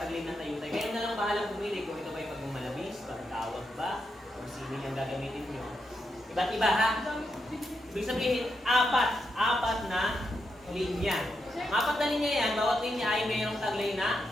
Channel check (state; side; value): normal; both; correlation 0.84